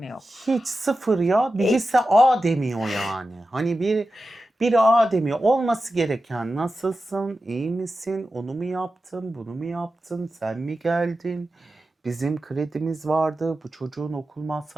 yok. hiç sıfır ya. Birisi A demiyor yani. Hani biri A demiyor. Olması gereken nasılsın, iyi misin, onu mu yaptın, bunu mu yaptın, sen mi geldin? Bizim kredimiz vardı, bu çocuğun okul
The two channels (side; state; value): both; normal; correlation 0.92